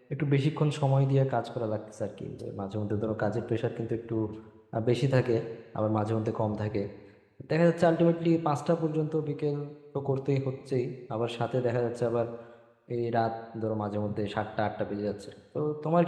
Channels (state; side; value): identical; both; correlation 1.00